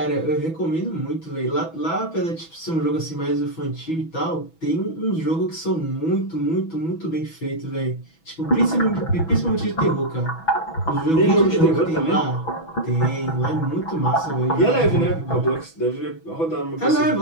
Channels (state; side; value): late; right; 6.1 ms